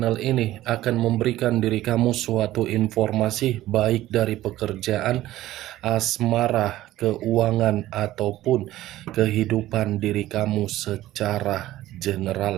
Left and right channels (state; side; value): quieter; left; 15.2 dB